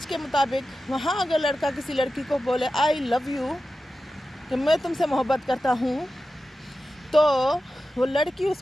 کے مطابق وہاں اگر لڑکا کسی لڑکی کو بولے آئی لو یو، کہ میں تم سے محبت کرتا ہوں، تو وہ لڑکی اس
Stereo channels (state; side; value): normal; both; correlation 0.93